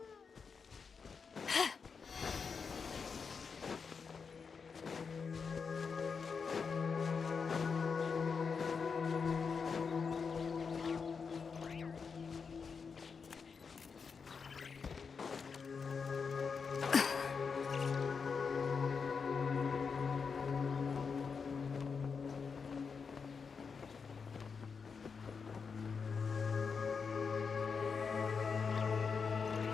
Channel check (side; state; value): right; quieter; 5.6 dB